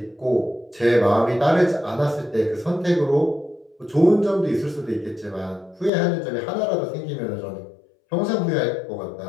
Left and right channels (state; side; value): drops out; right; at 5.9 s